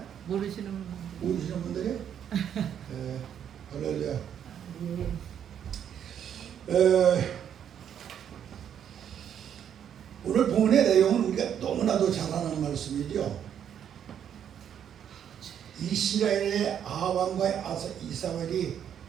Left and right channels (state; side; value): quieter; left; 9.1 dB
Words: 모르시는 분들. 오시는 분들이? 네, 할렐루야. 오늘 본문의 내용은 우리가 너무나도 잘 아는 말씀이죠. 이스라엘의 아합왕과 이사벨이